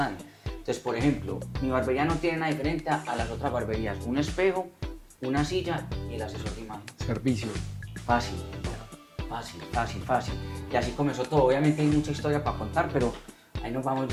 Entonces, por ejemplo, mi barbería no tiene nada diferente a las otras barberías. Un espejo, una silla y el asesor de imagen. Servicio. Fácil. Y así comenzó todo. Obviamente hay mucha historia para contar, pero ahí nos vamos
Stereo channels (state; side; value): identical; both; correlation 1.00